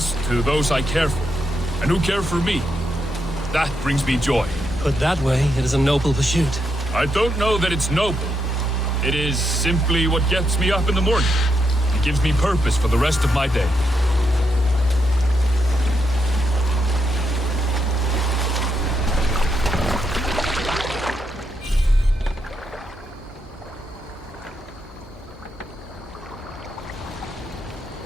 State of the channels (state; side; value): normal; both; correlation 0.81